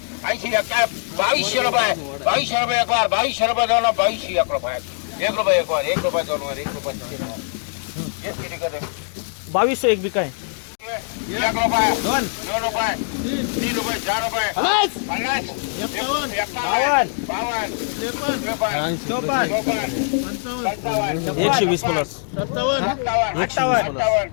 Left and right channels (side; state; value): right; silent; 64 dB below the other